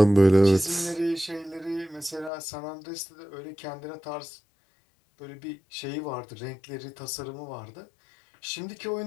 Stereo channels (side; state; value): right; drops out; at 2.3 s